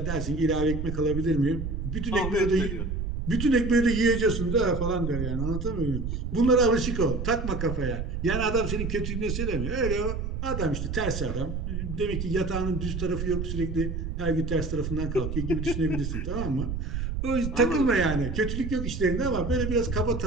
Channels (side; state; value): right; noise; rumble, 4 dB below the sound